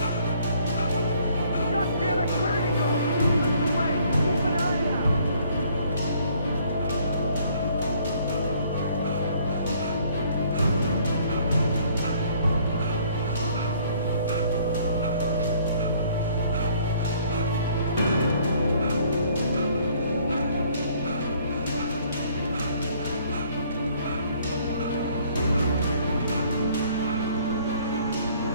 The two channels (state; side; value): inverted; both; correlation -0.61